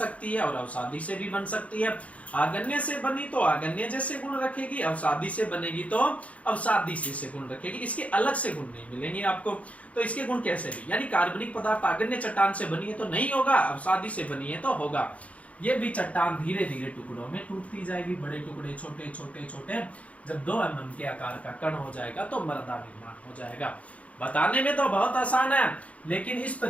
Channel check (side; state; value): right; late; 0.066 ms